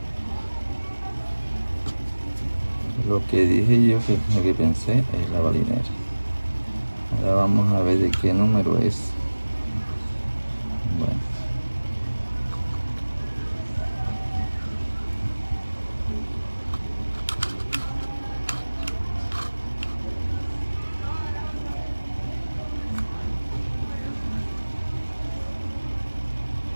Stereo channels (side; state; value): both; inverted; correlation -1.00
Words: Lo que dije yo, lo que pensé es la balinera. Ahora vamos a ver de qué número es. Bueno.